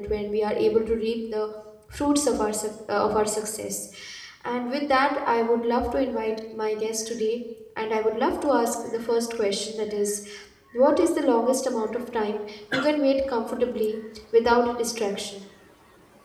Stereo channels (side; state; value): both; identical; correlation 1.00